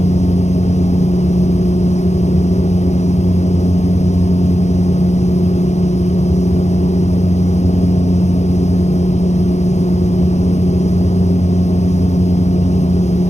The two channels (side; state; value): right; late; 0.33 ms